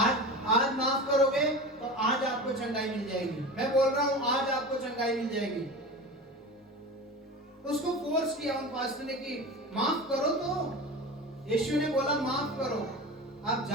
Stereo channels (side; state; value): both; normal; correlation 0.31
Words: आज माफ करोगे तो आज आपको चंगाई मिल जाएगी। मैं बोल रहा हूं आज आपको चंगाई मिल जाएगी। तो उसको फोर्स किया उन पास्टर ने कि माफ करो, तो यीशु ने बोला माफ करो। आप